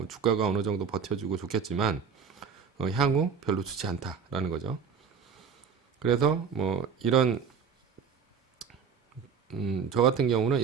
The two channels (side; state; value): left; quieter; 6.4 dB